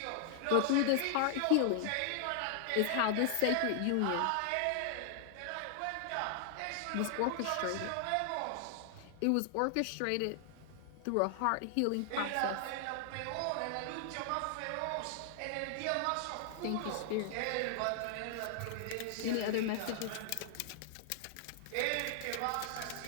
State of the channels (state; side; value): different; both; correlation 0.00